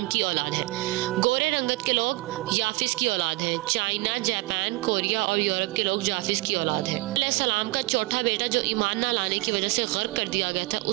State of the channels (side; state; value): left; quieter; 22.2 dB